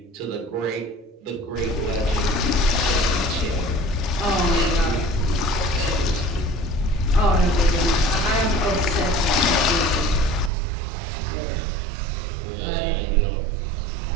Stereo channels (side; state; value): left; drops out; at 10.5 s